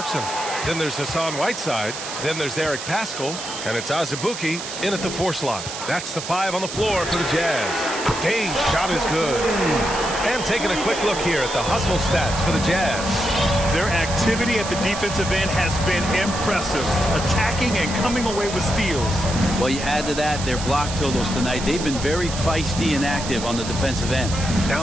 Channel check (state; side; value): noise; right; hiss, 8 dB below the sound